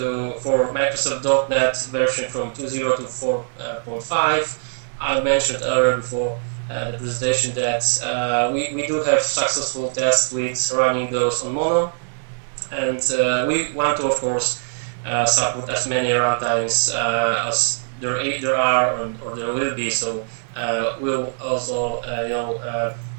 for Microsoft .NET version from 2.0 to 4.5. I mentioned earlier before the presentation that we do have successful tests with running those on Mono, and we want to, of course, support as many runtimes as there are or there will be. So we'll also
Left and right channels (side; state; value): left; silent; digital silence